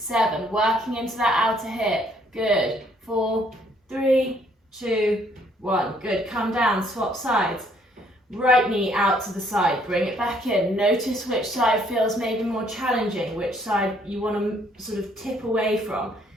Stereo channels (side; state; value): both; normal; correlation 0.65